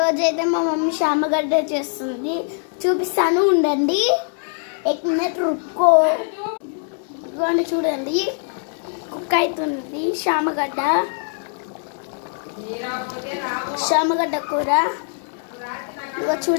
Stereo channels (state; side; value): silent; right; 59 dB below the other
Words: అయితే మా మమ్మీ శామగడ్డ చేస్తుంది, చూపిస్తాను ఉండండి. ఎక్ మినిట్ రుక్కో. ఇదిగోండి చూడండి, కుక్ అవుతుంది శామగడ్డ కూర. ఇదిగో